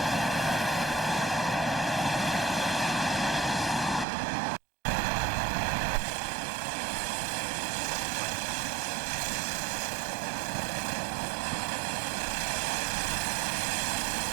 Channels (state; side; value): drops out; left; at 4.0 s